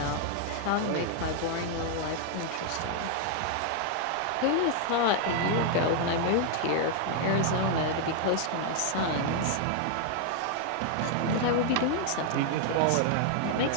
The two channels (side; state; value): both; different; correlation 0.00